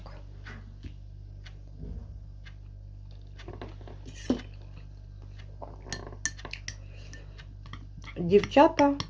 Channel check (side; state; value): both; identical; correlation 1.00